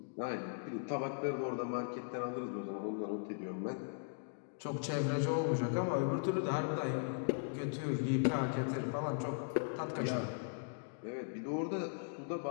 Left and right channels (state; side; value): silent; right; digital silence